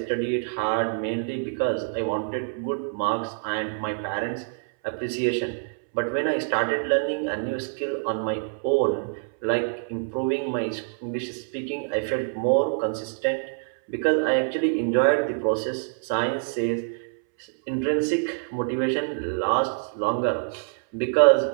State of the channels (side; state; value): left; silent; 61 dB below the other